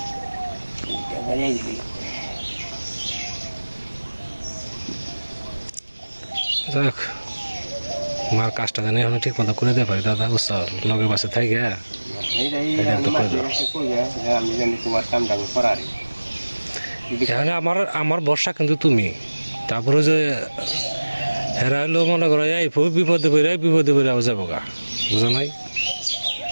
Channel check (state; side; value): inverted; both; correlation -1.00